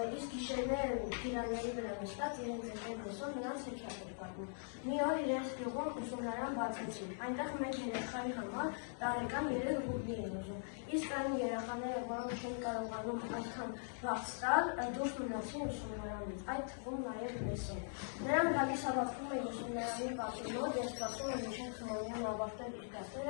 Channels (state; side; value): silent; right; digital silence